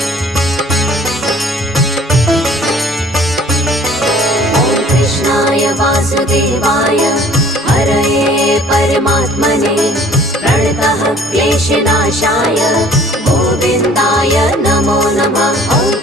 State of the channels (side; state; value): both; normal; correlation 0.53